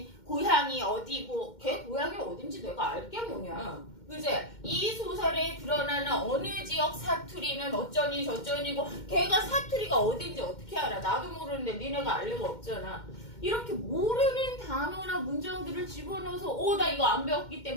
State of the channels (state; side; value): late; right; 2.1 ms